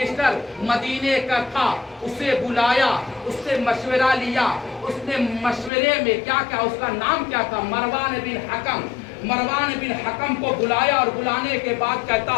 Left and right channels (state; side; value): drops out; right; at 5.7 s